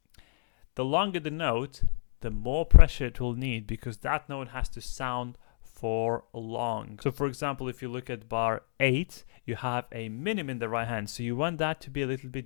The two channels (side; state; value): right; silent; digital silence